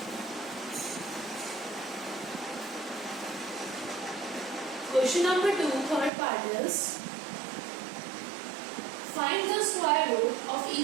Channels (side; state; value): left; drops out; at 6.1 s